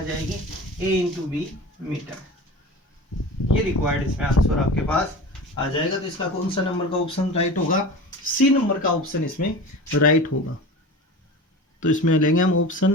जाएगी, a इंटू बी मीटर। ये रिक्वायर्ड इसमें आंसर आपके पास आ जाएगा। तो इसका कौन सा नंबर का ऑप्शन राइट होगा, सी नंबर का ऑप्शन इसमें राइट होगा। तो इसमें लेंगे हम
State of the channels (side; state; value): both; normal; correlation 0.33